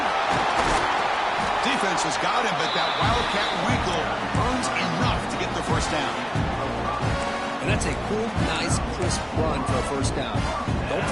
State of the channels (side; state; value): both; identical; correlation 1.00